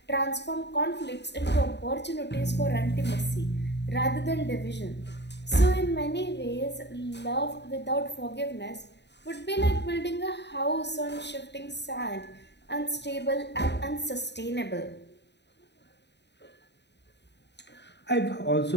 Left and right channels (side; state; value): right; late; 0.50 ms